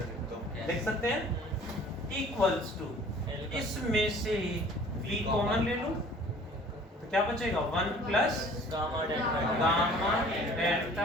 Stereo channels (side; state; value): both; normal; correlation 0.50